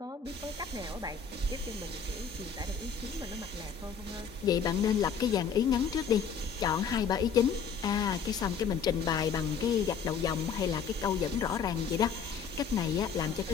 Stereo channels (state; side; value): quieter; right; 6.5 dB